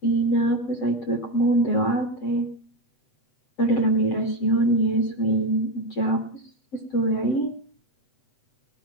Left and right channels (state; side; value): late; right; 7.7 ms